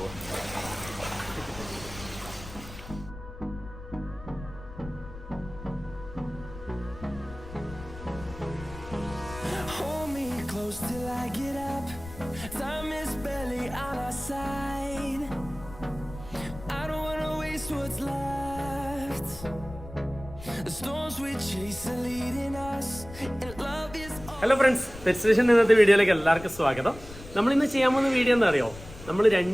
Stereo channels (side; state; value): left; noise; rumble, 15 dB below the sound